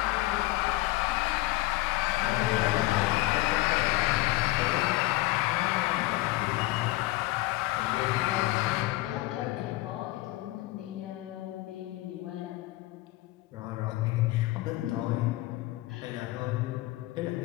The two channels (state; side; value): quieter; right; 18.6 dB